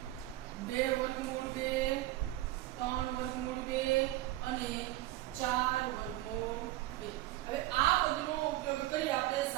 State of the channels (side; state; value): left; quieter; 16.3 dB